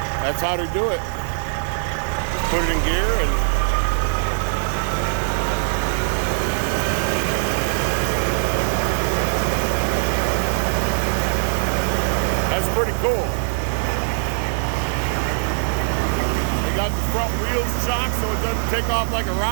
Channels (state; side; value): silent; left; digital silence